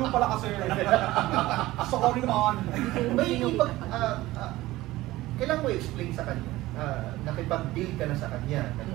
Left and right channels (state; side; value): quieter; left; 17.5 dB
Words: pala kasi. Sorry naman. May ipag... kailangan mo i-explain sa kanya. Nakipag-deal ka na sa kanya.